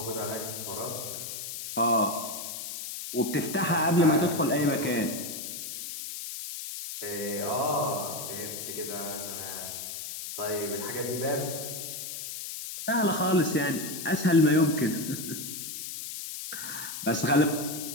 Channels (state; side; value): noise; left; hiss, 7 dB below the sound